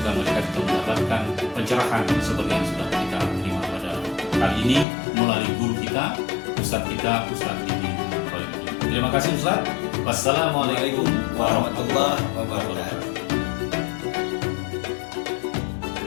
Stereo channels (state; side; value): drops out; right; at 4.9 s